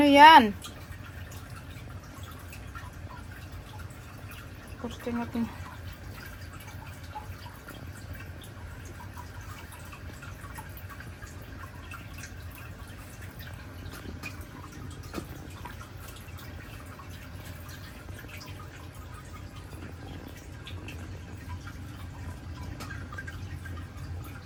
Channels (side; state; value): both; identical; correlation 1.00